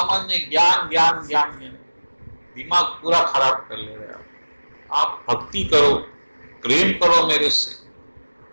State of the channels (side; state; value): both; inverted; correlation -1.00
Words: ज्ञान ज्ञान ज्ञान ज्ञान, दिमाग पूरा खराब कर ले रहे आप। भक्ति करो, प्रेम करो मेरे से।